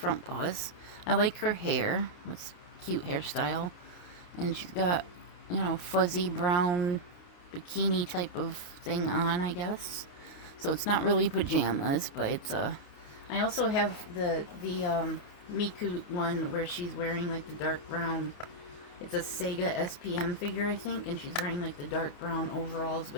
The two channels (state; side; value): late; right; 28 ms